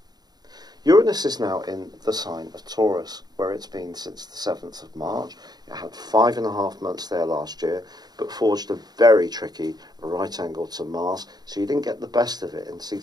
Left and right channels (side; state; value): left; late; 0.20 ms